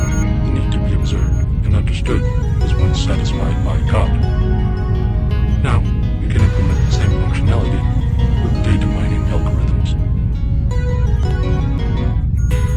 need to be observed and understood was once satisfied by God. Now, we can implement functionality with data mining algorithms.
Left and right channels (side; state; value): both; identical; correlation 1.00